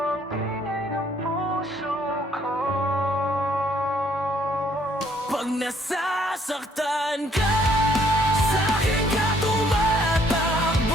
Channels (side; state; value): both; normal; correlation 0.65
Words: ang ingay ng puso ko. Pag nasasaktan ka, sa'kin ka